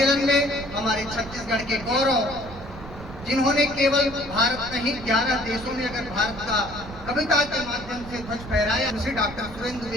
में हमारे छत्तीसगढ़ के गौरव, जिन्होंने केवल भारत नहीं 11 देशों में अगर भारत का कविता के माध्यम से ध्वज फहराया, श्री डॉक्टर सुरेंद्र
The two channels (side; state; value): right; noise; rumble, 14 dB below the sound